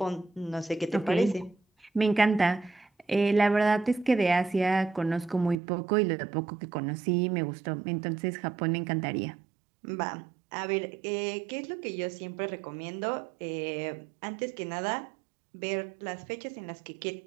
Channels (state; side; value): drops out; left; at 5.6 s